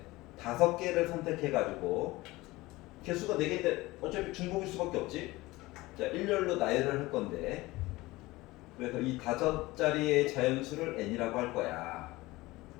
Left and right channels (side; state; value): right; quieter; 20.0 dB